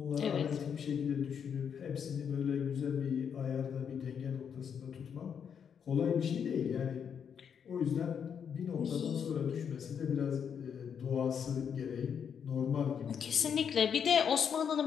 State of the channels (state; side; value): quieter; right; 7.5 dB